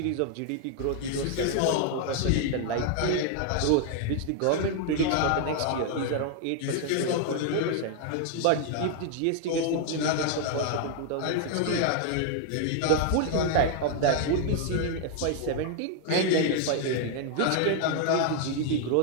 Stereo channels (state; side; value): different; both; correlation 0.00